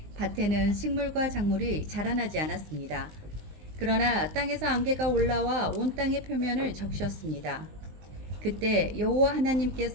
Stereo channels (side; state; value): left; late; 19 ms